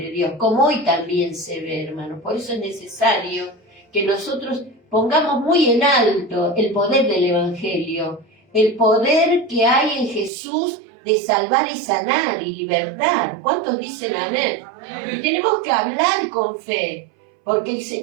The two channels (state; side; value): drops out; left; at 10.3 s